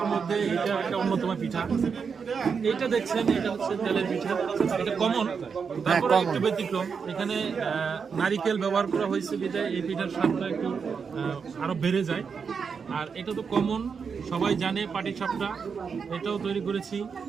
মধ্যে এটা একটা অন্যতম পিঠা। এইটা দেখছেন এটা হচ্ছে তেলের পিঠা, এটা কমন, তারপরে একটু ব্যতিক্রম। এখানে নারিকেল ব্যবহার করা হয়েছে বিধায় এই পিঠার স্বাদটা একটু আরো বেড়ে যায়। আর এটা তো কমন, সবাই জানে পাটিসাপটা, এটাও তৈরি করেছি।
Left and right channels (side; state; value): left; quieter; 5.9 dB